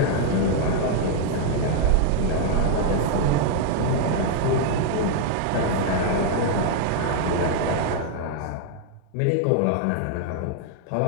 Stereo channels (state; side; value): different; both; correlation 0.00